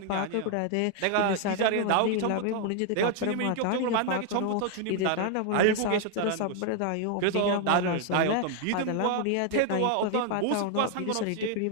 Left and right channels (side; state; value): both; different; correlation 0.00